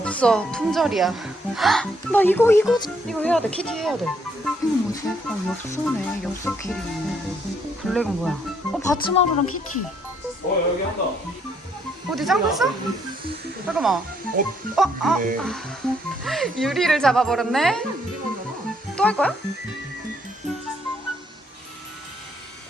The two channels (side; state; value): both; normal; correlation 0.70